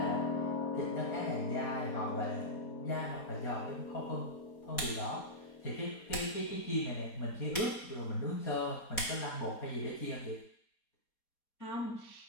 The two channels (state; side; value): late; right; 4.2 ms